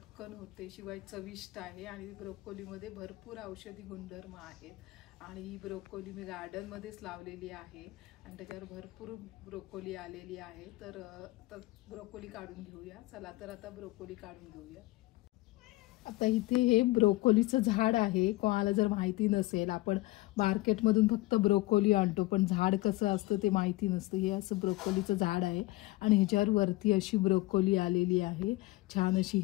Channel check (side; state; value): right; quieter; 19.9 dB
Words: होते, शिवाय चविष्ट आहे आणि ब्रोकोलीमध्ये भरपूर औषधी गुणधर्म आहेत। आणि ही ब्रोकोली मी गार्डनमध्येच लावलेली आहे आणि त्याच्यावर भरपूर ब्रोकोली आलेली आहे। तर ब्रोकोली काढून घेऊया। चला तर आता ब्रोकोली काढून घेऊया। आता इथे हे ब्रोकोलीचं झाड आहे। कोणाला जर माहिती नसेल, आपण मार्केटमधून फक्त ब्रोकोली आणतो, पण झाड कसं असतं ते माहिती नसतं। हे असं ब्रोकोलीचं झाड आहे आणि ह्याच्यावर वरती अशी ब्रोकोली आलेली आहे, छान अशी